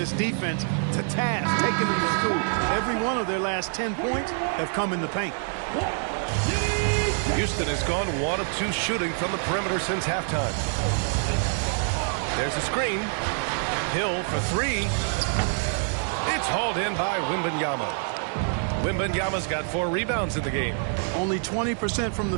defense to task, taking them to school. Every one of their last 10 points have come in the paint. Houston has gone 1 of 2 shooting from the perimeter since halftime. There's a screen. Hill for 3. It's hauled in by Wembanyama. Wembanyama's got 4 rebounds in the game. Only 20% from the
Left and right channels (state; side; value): silent; left; 57 dB below the other